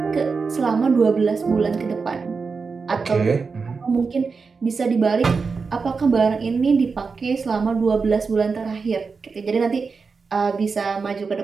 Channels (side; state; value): left; quieter; 4.8 dB